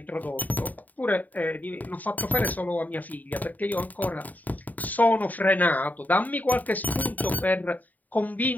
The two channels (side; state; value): right; late; 0.080 ms